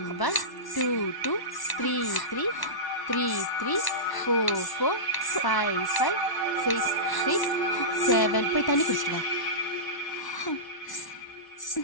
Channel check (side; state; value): right; late; 1.1 ms